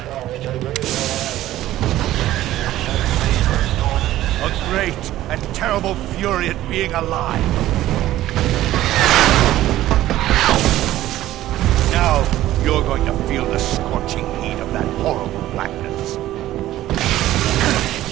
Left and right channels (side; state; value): left; quieter; 14.5 dB